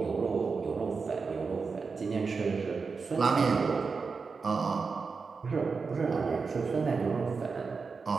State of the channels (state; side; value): quieter; left; 4.8 dB